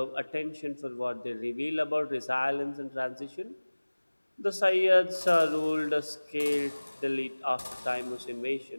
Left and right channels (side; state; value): both; inverted; correlation -1.00